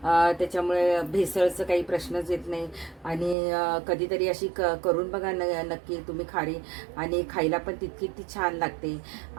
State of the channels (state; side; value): drops out; left; at 3.4 s